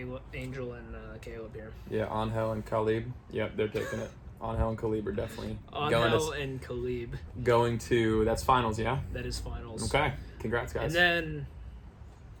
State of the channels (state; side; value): identical; both; correlation 1.00